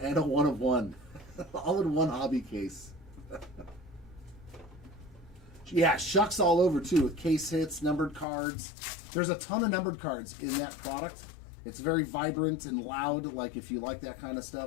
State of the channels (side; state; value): right; drops out; at 8.2 s